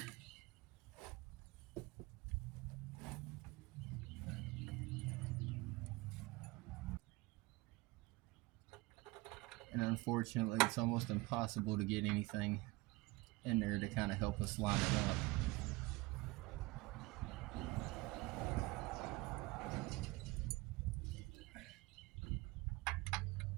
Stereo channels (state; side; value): quieter; left; 22.5 dB